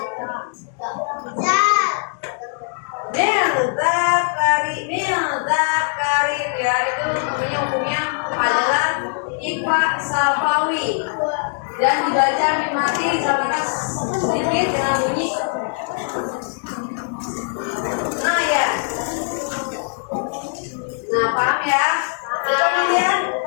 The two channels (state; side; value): silent; right; 64 dB below the other